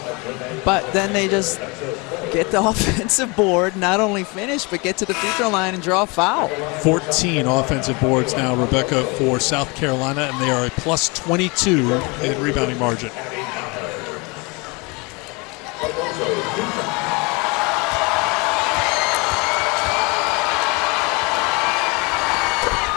But then they just get the offensive board, not only finish, but get to the free throw line and draw a foul. 14 offensive boards now, Rebecca, for South Carolina, and they are a plus 22 in rebounding margin.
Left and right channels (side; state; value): right; quieter; 28.3 dB